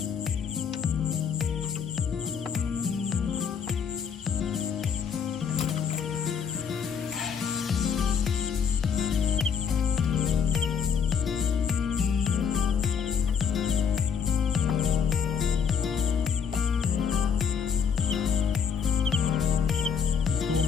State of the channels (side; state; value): right; quieter; 6.7 dB